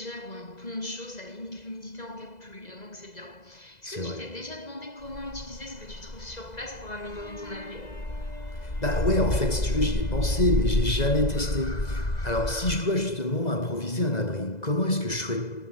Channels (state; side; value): late; right; 2.0 ms